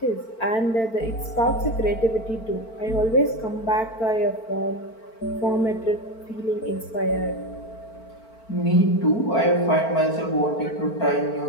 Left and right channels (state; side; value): late; right; 4.5 ms